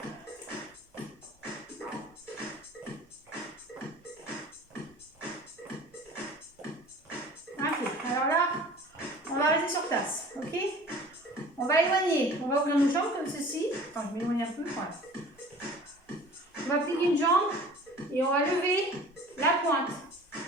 Ok, alors là, va éloigner. On va ouvrir nos jambes comme ceci. Attends, je m'éloigne un peu. Voilà. On va plier une jambe et on va lever la pointe.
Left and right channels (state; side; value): normal; both; correlation 0.45